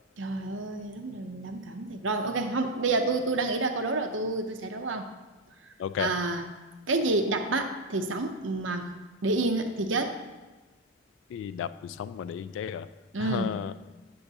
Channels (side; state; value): both; normal; correlation 0.06